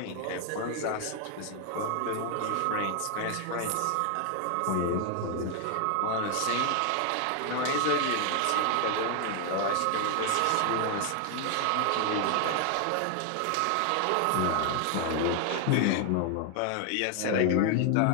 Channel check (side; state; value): both; different; correlation 0.00